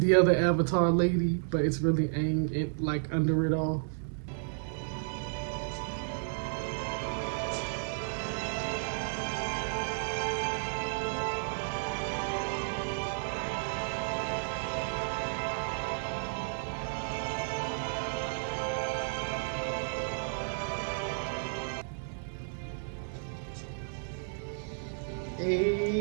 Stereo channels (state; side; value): silent; left; digital silence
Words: other Avatar lady, but it's really Aang, like under it all. Hey,